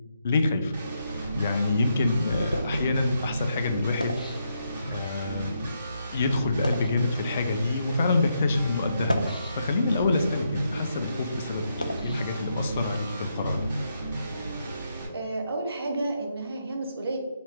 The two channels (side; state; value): both; inverted; correlation -0.80